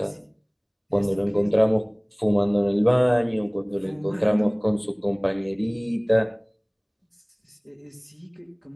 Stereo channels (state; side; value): identical; both; correlation 1.00